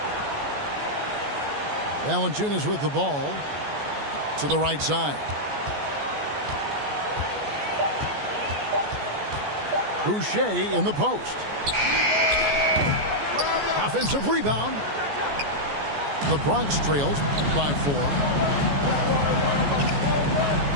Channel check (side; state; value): left; late; 14 ms